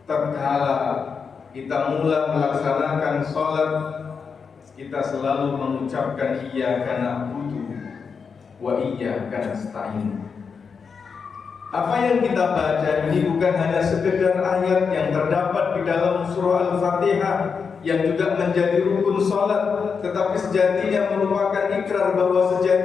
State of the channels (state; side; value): quieter; right; 5.7 dB